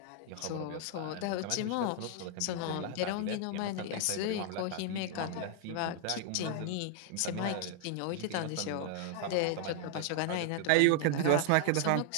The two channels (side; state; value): both; different; correlation 0.00